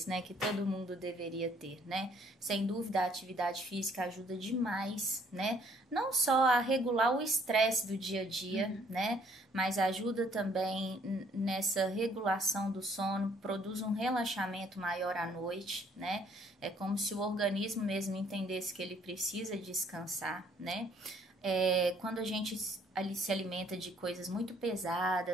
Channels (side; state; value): both; normal; correlation 0.63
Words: né? Que todo mundo deveria ter, né? Sem dúvida, a atividade física ajuda demais, né? Não só a regular o estresse do dia a dia, né? Mas ajuda também nessa regulação do sono, produz um relaxamento maior à noite, né? É como se o organismo mesmo entendesse que ele precisa descansar, né? Quando a gente ali se alimenta de coisas muito